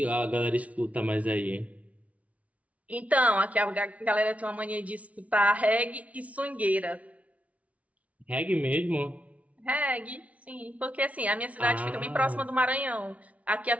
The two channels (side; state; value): left; late; 0.067 ms